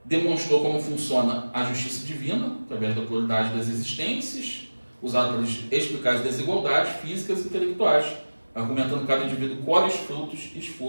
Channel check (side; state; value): both; inverted; correlation -1.00